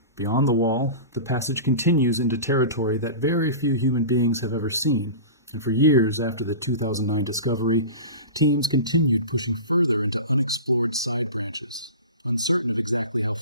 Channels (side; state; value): both; inverted; correlation -0.32